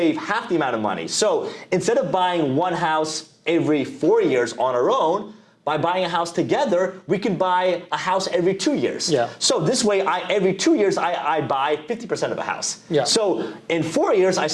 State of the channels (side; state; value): both; identical; correlation 1.00